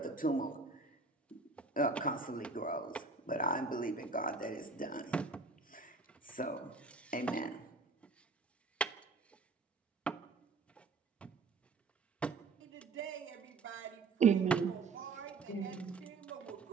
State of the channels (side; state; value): left; quieter; 4.0 dB